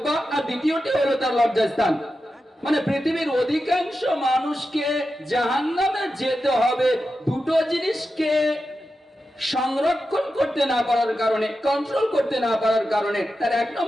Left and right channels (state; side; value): normal; both; correlation 0.90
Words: আর দ্বিতীয়টি হলো তার লজ্জাস্থান। মানে পৃথিবীর অধিকাংশ মানুষকে জাহান্নামে যেতে হবে দুটো জিনিসকে সংরক্ষণ করতে না পারার কারণে, কন্ট্রোল করতে না পারার কারণে। তার এক